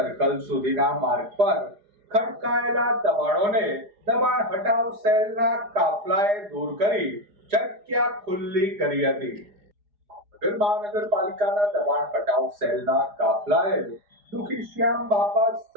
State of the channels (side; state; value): left; late; 4.8 ms